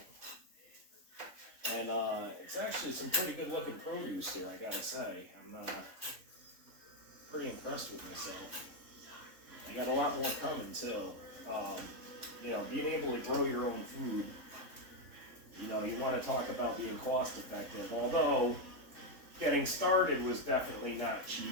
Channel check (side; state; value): left; late; 3.6 ms